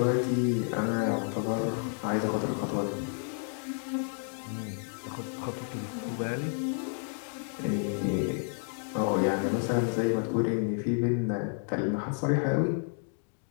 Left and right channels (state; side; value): silent; right; 56 dB below the other